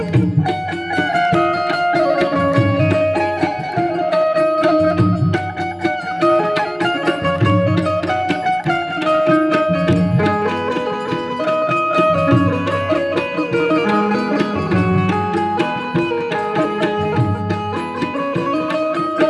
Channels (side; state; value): both; identical; correlation 1.00